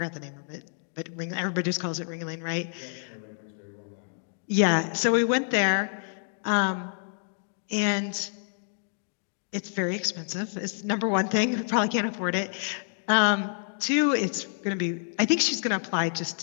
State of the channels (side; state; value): right; silent; digital silence